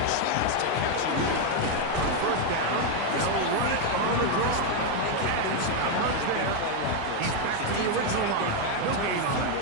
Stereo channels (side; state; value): both; different; correlation 0.02